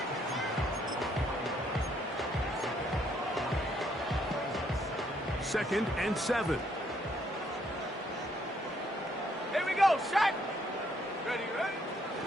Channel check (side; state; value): both; normal; correlation 0.70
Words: Second and 7. Here we go, set. Ready.